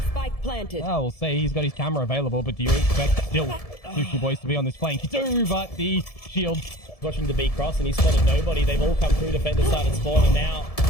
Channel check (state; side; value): late; right; 1.7 ms